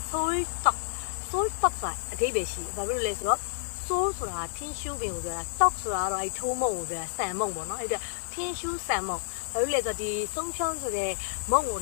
soy stock ကအဓိပ္ပာယ်ရှိတယ်ဘာဖြစ်လို့လဲဆိုတော့ soy 소소라틴슈빈ကိုပြောတာ떡ဆိုတာတော့အဲ့ထိုးမုံကိုပြောတာဆန်မုံပေါ့နော်အဲ့ဒါထင်းရှူးဆန်မုံဘာလို့လဲဆိုတော့ဒီဆုံးဖြောင်းဆိုတဲ့မုံကို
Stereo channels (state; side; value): silent; right; digital silence